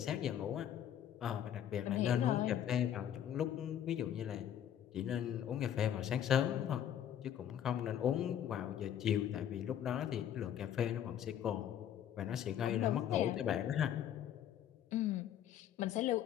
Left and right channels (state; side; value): quieter; right; 10.2 dB